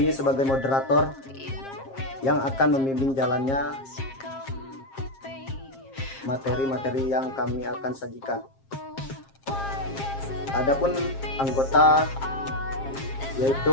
sebagai moderator yang akan membimbing jalannya materi-materi yang kami akan sajikan. Adapun anggota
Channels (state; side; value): late; right; 7.5 ms